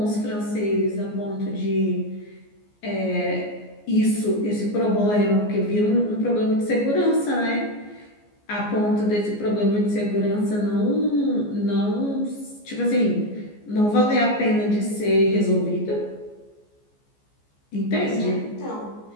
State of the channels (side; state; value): right; late; 14 ms